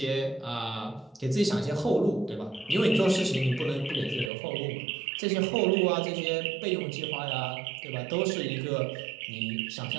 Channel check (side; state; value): left; drops out; at 4.3 s